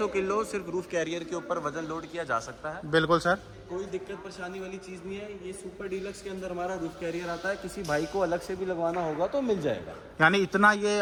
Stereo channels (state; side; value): identical; both; correlation 1.00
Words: किलो सिर्फ रूफ कैरियर के ऊपर वजन लोड किया जा सकता है। बिल्कुल सर। कोई दिक्कत परेशानी वाली चीज़ नहीं है। ये सुपर डीलक्स के अंदर हमारा रूफ कैरियर आता है, किसी भाई को अलग से भी लगवाना होगा तो मिल जाएगा। यानी इतना ये